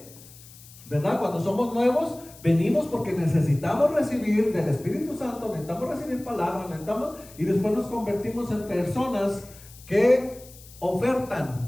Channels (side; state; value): left; noise; hiss, 21 dB below the sound